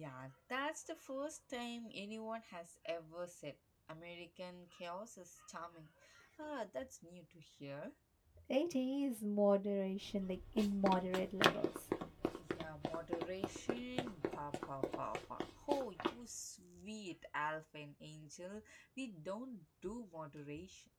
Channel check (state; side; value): identical; both; correlation 1.00